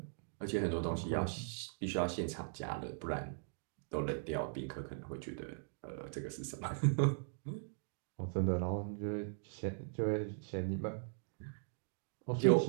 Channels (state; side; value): silent; left; digital silence